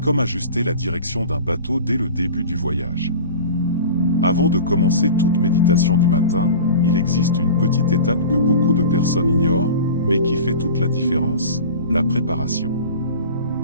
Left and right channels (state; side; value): inverted; both; correlation -0.36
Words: ajuster la direction d'un bateau dès le début du voyage. Avant de commencer toute méditation du matin, il existe une petite étape que beaucoup de personnes ignorent, mais qui fait toute la différence, la préparation.